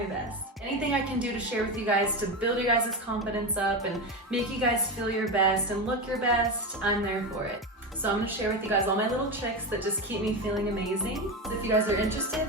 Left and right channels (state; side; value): normal; both; correlation 0.18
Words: best. Anything I can do to share with you guys to build your guys' confidence up and make you guys feel your best and look your best, I'm there for it. So I'm going to share with you guys all my little tricks that just keep me feeling amazing. So if you guys are interested,